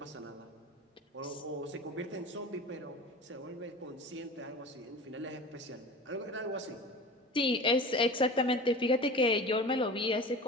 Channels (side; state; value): both; normal; correlation 0.36